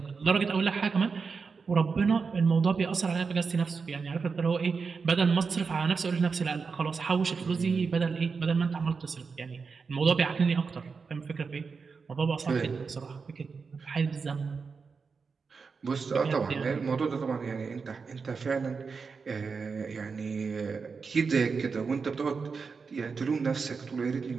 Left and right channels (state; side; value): quieter; left; 5.1 dB